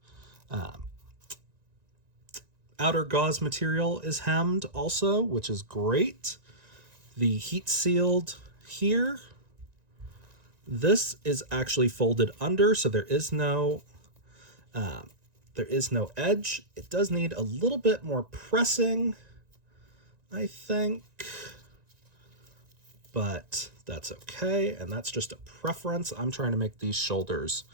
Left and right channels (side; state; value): left; late; 1.9 ms